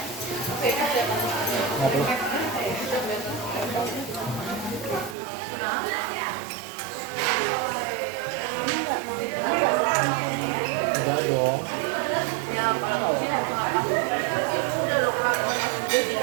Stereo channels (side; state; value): left; drops out; at 5.2 s